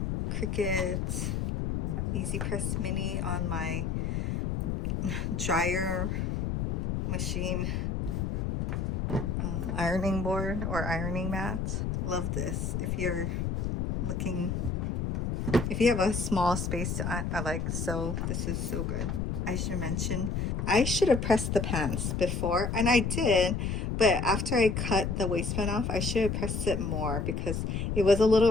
Cricut Easy Press Mini on my dryer machine ironing board or ironing mat. Love this if you're looking If you have a small space, I like, so this is so good. I should mention, I should have pressed the pants before, and I did, but after I cut the waistband off, I should have pressed it more because it was a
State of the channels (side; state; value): left; noise; rumble, 1 dB below the sound